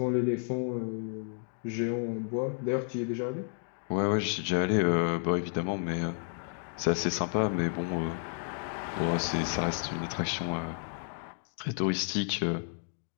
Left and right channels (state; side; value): silent; right; 57 dB below the other